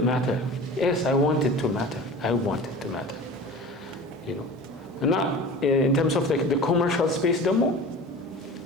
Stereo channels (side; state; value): both; normal; correlation 0.37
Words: matter yes I want it to matter you know እና in terms of the commercial space ደግሞ